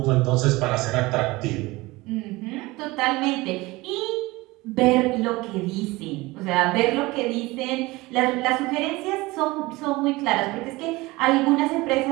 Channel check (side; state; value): left; quieter; 21.3 dB